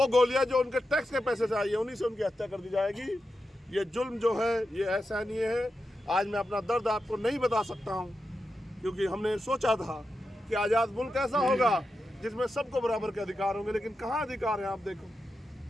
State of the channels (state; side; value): normal; both; correlation 0.89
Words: गोलियां जो उनके टैक्स के पैसे से आई है, उन्हीं से उनकी हत्या कर दी जाएगी। ये जुल्म जो है ये असहनीय है। आज मैं अपना दर्द आपको नहीं बता सकता हूँ, क्योंकि हमने सोचा था कि आज़ाद मुल्क ऐसा होगा जिसमें सबको बराबर के अधिकार होंगे, लेकिन कहाँ अधिकार है आप देखो।